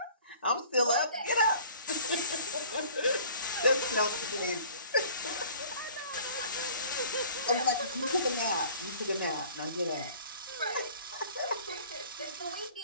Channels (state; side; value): inverted; both; correlation -0.50